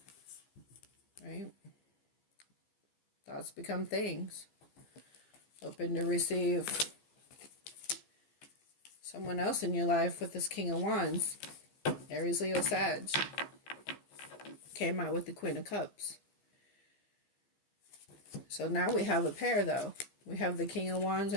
Right? Thoughts become things. Open to receive someone else in your life with this King of Wands. Aries, Leo, Sag. Came out with the Queen of Cups. So now we have a pair, though. We have the King of Wands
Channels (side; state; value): right; late; 14 ms